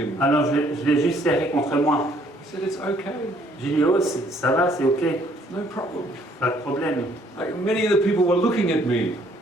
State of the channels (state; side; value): normal; both; correlation 0.64